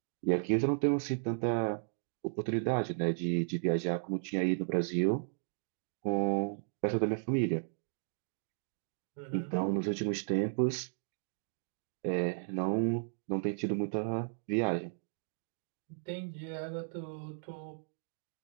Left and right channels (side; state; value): left; silent; digital silence